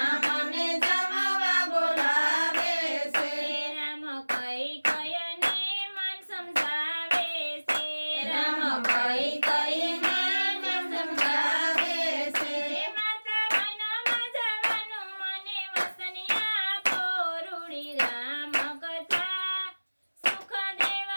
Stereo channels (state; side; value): inverted; both; correlation -1.00